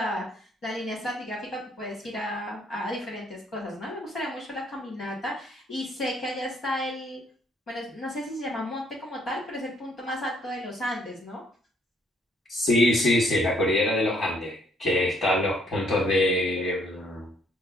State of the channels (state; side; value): normal; both; correlation 0.66